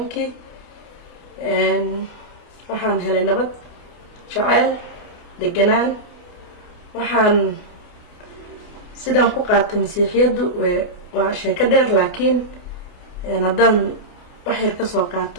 waxaan helay nabad jacayl deganaan waxaan sidaan ku qaatay masiixiyadu waa sheeko dheer laakiin haddaan wax yar ka soo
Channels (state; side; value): late; right; 28 ms